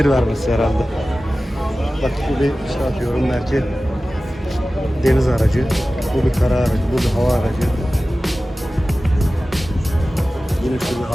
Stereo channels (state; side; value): normal; both; correlation 0.96